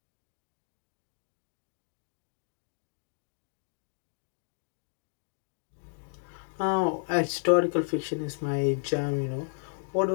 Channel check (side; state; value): right; silent; digital silence